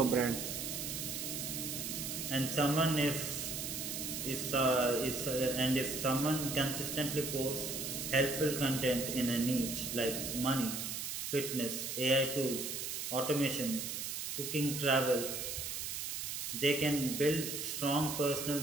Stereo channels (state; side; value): noise; right; hiss, 4 dB below the sound